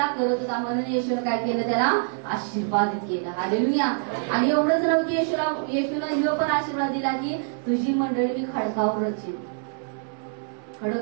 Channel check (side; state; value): left; silent; 62 dB below the other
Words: करत होता म्हणून येशूने काय केलं? त्याला आशीर्वादित केलं. हालेलुया. आणि एवढंच नव्हतं, येशूनं ह्यो पण आशीर्वाद दिला की तुझी मंडळी मी खडकावर रचीन. खडक